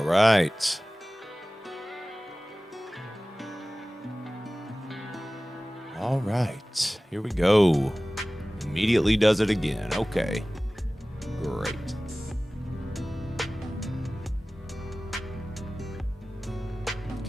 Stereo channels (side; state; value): both; normal; correlation 0.97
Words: right. All right. Here we go. Immediately does it again. Okay. Great.